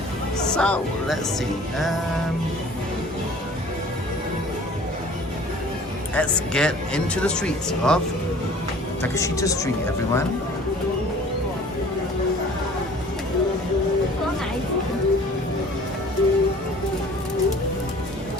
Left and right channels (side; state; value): both; normal; correlation 0.49